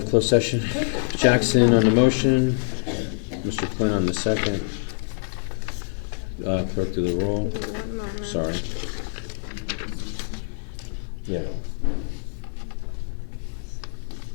closed session. Jackson on the motion, Mr. Quinn on the second. Clerk do the roll. Sorry. Yeah.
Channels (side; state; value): right; silent; 62 dB below the other